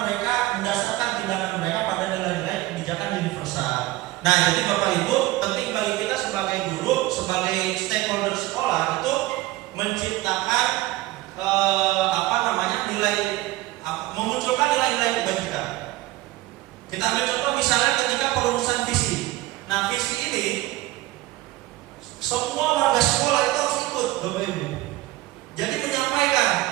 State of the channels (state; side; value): quieter; left; 17.9 dB